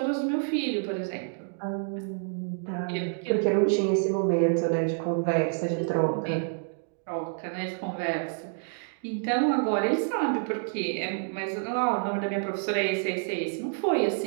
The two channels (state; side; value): silent; left; digital silence